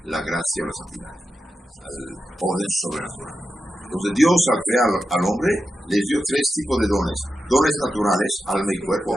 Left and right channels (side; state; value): both; normal; correlation 0.89